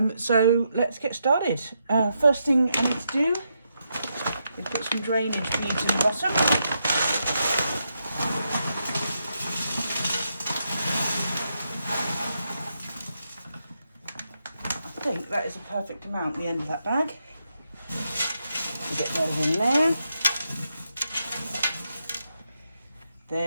So let's get started. First thing I need to do is put some drainage beads in the bottom. I think that is a perfect amount at the end of that bag. Get those in there.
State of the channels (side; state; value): both; inverted; correlation -0.82